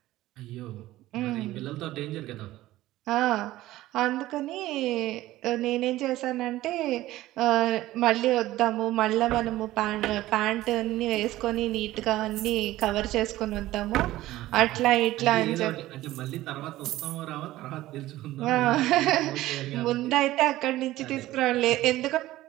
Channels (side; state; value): left; quieter; 16.1 dB